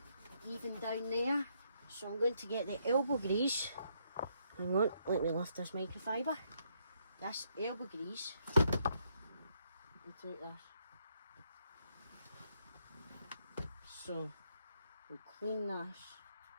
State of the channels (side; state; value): both; inverted; correlation -0.74